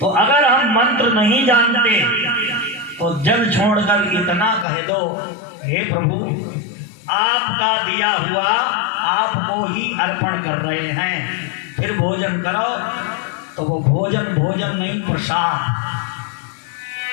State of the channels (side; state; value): right; drops out; at 4.7 s